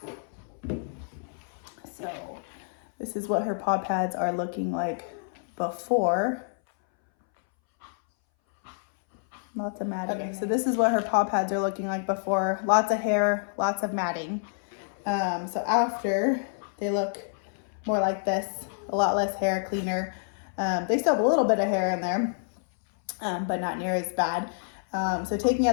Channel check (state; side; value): silent; right; 59 dB below the other